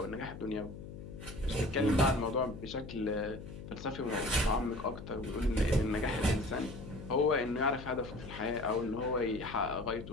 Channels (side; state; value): left; noise; hum, 12 dB below the sound